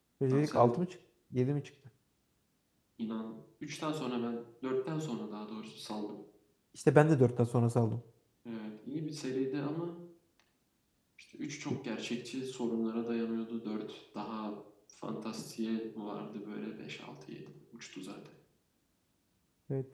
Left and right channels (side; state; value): both; identical; correlation 1.00